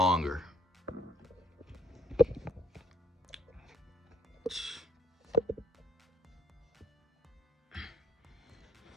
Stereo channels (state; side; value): normal; both; correlation 0.65